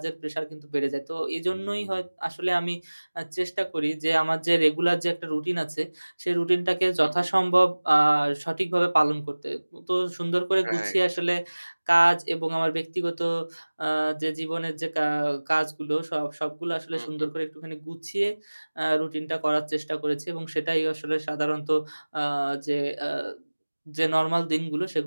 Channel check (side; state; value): both; inverted; correlation -1.00